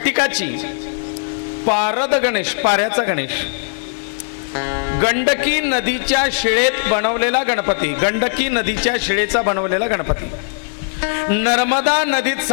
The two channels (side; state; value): right; silent; digital silence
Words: पारद गणेश, पाऱ्याचा गणेश, गंडकी नदीच्या शिळेत बनवलेला गणपती, गंडकी नदीच्या शिळेचा बनवलेला गणपती, नर्मदा नदीत